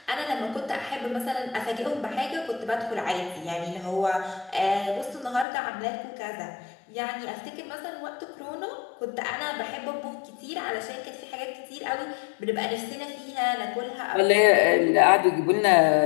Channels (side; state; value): right; drops out; at 5.5 s